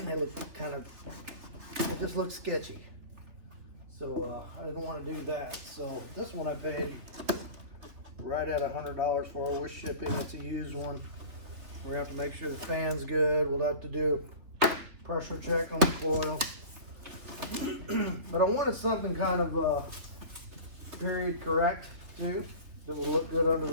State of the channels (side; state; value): left; late; 3.5 ms